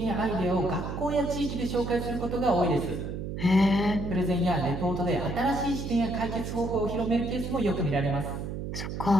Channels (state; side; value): noise; right; hum, 5 dB below the sound